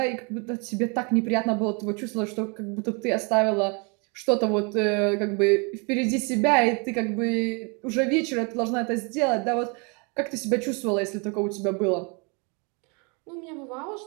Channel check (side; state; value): left; quieter; 32.9 dB